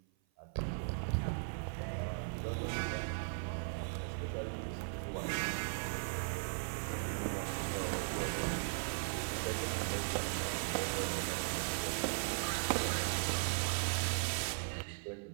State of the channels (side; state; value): left; silent; 52 dB below the other